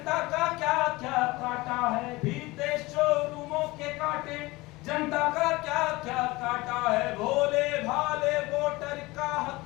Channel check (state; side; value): quieter; right; 21.4 dB